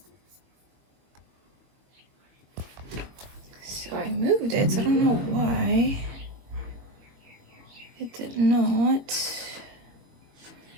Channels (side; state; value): left; late; 22 ms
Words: So I moved it, so I don't know why it did not.